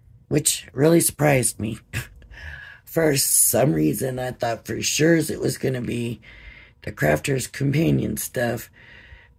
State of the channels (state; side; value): identical; both; correlation 1.00